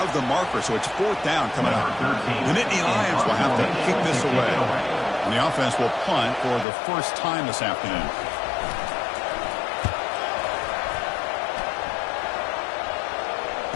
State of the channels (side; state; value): right; drops out; at 6.7 s